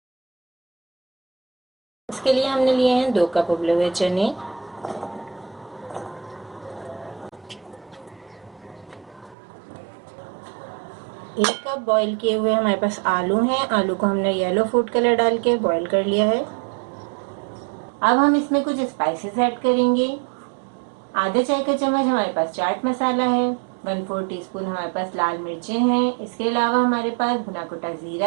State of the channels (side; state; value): left; drops out; at 9.3 s